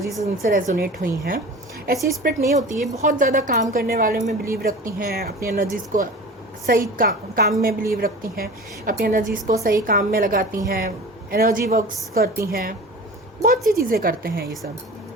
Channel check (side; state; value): both; normal; correlation 0.37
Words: उनसे रेजोनेट हुई हैं, ऐसी स्पिरिट नहीं होती है। बहुत ज़्यादा काम करने वाले में बिलीव रखती हैं, अपनी एनर्जीज़ को सही काम में बिलीव रखती हैं, अपनी एनर्जीज़ को सही काम में लगाती हैं, एनर्जी वर्क्स करती हैं, बहुत सी चीज़ें करते हैं ये सब।